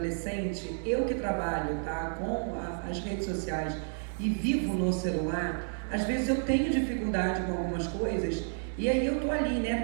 eu que trabalho com as redes sociais e vivo no celular, às vezes eu tenho dificuldade com algumas coisas, e aí eu tô ali, né,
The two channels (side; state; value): left; silent; 57 dB below the other